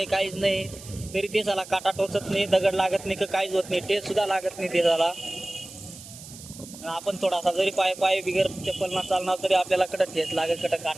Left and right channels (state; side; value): noise; right; hiss, 16 dB below the sound